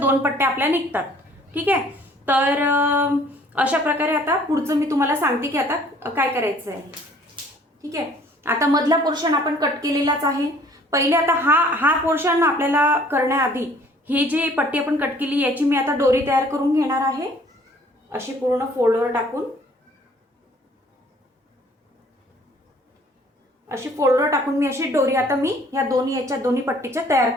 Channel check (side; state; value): both; normal; correlation 0.56